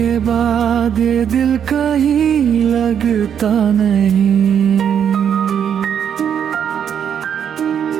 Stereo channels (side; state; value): left; quieter; 8.4 dB